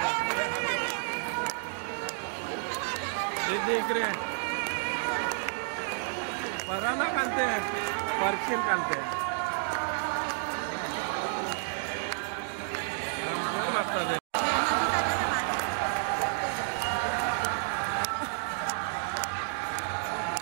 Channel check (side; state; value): left; silent; digital silence